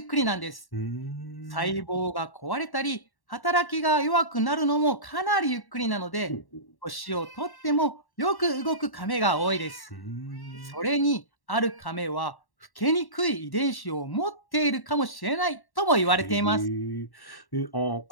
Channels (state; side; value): late; right; 1.1 ms